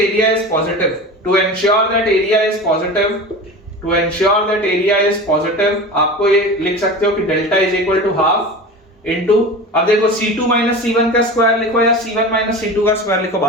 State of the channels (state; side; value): normal; both; correlation 0.32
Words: is positive, to ensure that area is positive, to ensure that area is positive, आपको ये लिख सकते हो कि delta is equal to half into, अब देखो C2 minus C1 का square लिखो या C1 माइनस C2 का स्क्वायर लिखो,